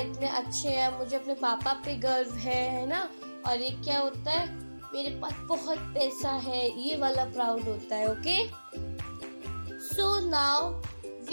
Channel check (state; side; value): inverted; both; correlation -1.00